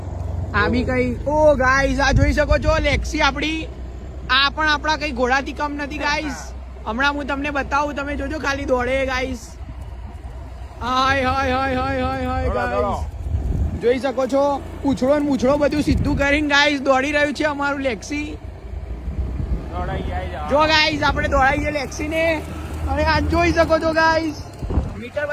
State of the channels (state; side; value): identical; both; correlation 1.00